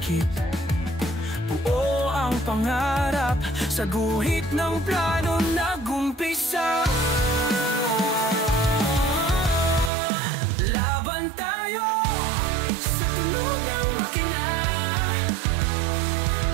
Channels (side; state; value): left; drops out; at 9.9 s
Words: Buo ang pangarap, sa guhit ng plano nag-umpisa. Laban tayo sa tunog ng makina,